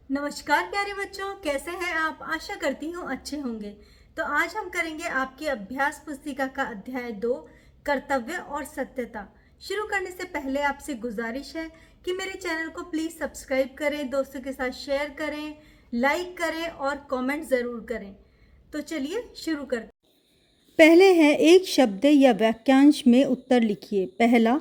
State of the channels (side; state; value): both; identical; correlation 1.00